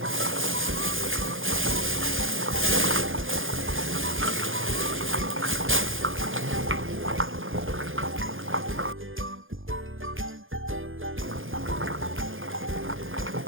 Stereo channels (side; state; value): left; late; 0.59 ms